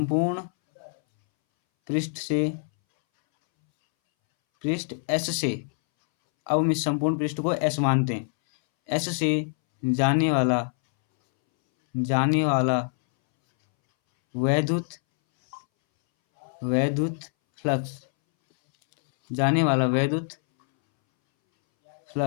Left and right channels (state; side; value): silent; right; 62 dB below the other